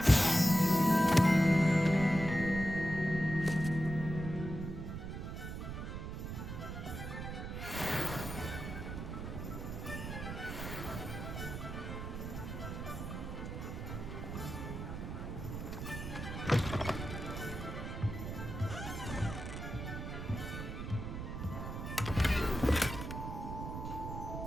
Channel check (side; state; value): right; noise; rumble, 6 dB below the sound